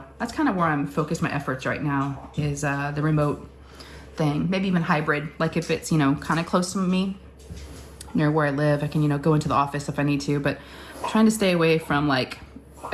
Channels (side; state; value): both; identical; correlation 1.00